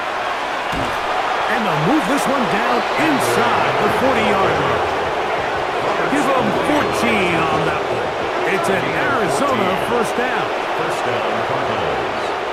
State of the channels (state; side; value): identical; both; correlation 1.00